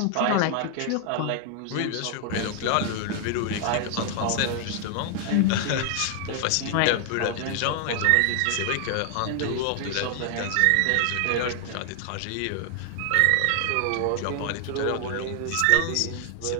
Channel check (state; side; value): different; both; correlation 0.00